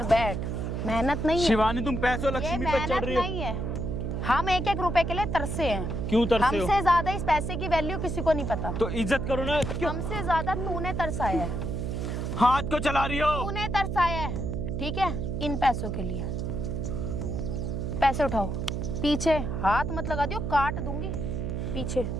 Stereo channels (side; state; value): right; noise; hum, 3 dB below the sound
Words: बैठ, मेहनत नहीं है शिवानी, तुम पैसों ये, लक्ष्मी पे चढ़ मेहनत रही हो। नहीं है। हम 1-1 रुपए के लिए तरसे हैं। क्यों तरसे हो? हमसे ज्यादा इस पैसे की वैल्यू किसी को नहीं पता। तो इज्जत करो ना। क्यों हमसे ज्यादा तूने तरसाया है, हाथ को चला रही हो? तूने तरसाया है, ठीक है? इन पैसों के लिए पैसे उठाओ। पीछे हाथ मत लगा दियो, काट दूंगी पीछे।